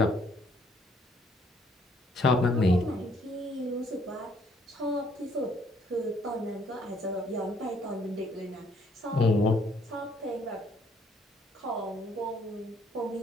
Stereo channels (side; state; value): both; normal; correlation 0.65